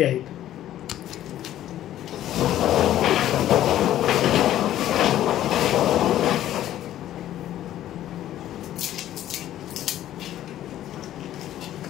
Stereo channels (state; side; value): quieter; right; 12.6 dB